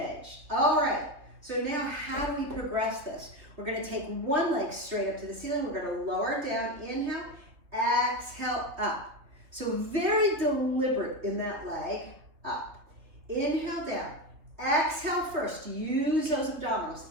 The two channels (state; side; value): late; left; 3.0 ms